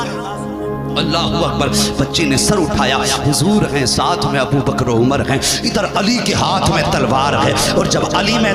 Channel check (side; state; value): both; identical; correlation 1.00